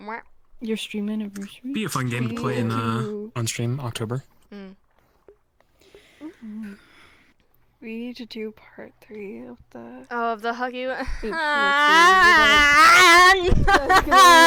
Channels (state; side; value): identical; both; correlation 1.00